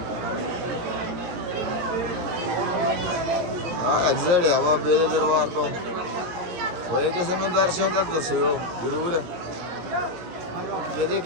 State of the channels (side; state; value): left; late; 17 ms